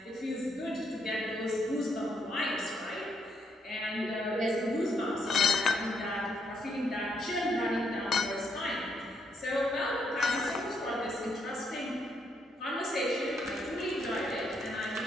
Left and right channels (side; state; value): both; normal; correlation 0.75